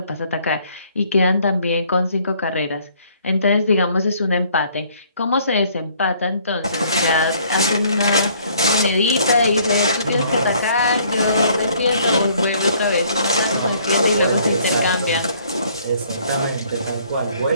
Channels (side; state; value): both; inverted; correlation -0.61